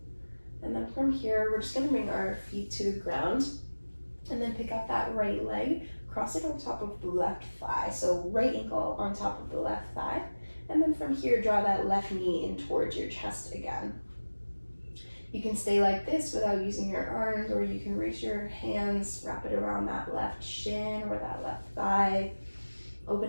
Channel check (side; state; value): both; inverted; correlation -1.00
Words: And then from here, we're just gonna bring our feet to the ground. And then pick up that right leg, cross it on top of the left thigh. So right ankle on top of the left thigh. And then from here, draw that left knee in towards your chest again. You can stay like this without using your arms, or you can reach your hands, wrap it around that left shin or that left thigh,